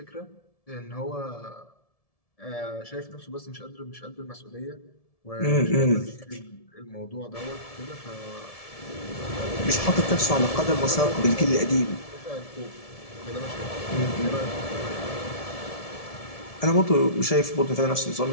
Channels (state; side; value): late; right; 1.7 ms